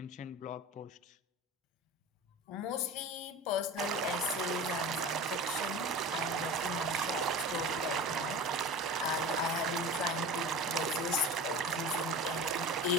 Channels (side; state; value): both; normal; correlation 0.33